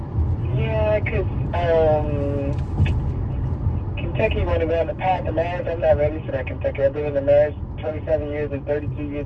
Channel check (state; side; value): identical; both; correlation 1.00